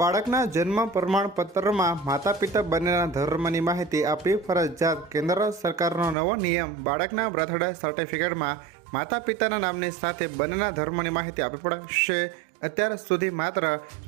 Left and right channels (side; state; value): left; drops out; at 6.2 s